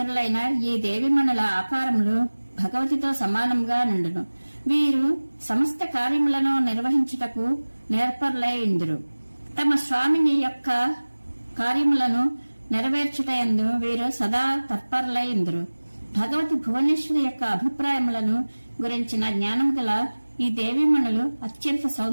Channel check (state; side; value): inverted; both; correlation -1.00